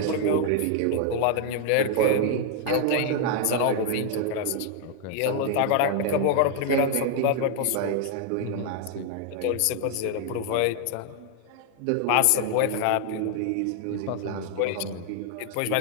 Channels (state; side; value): different; both; correlation 0.00